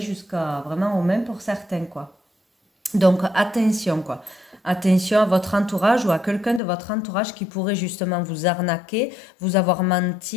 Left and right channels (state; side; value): drops out; right; at 6.6 s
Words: vraiment au même pour certains, quoi. Donc attention quoi. Attention à votre entourage ou à quelqu'un de votre entourage qui pourrait justement vous arnaquer, vous avoir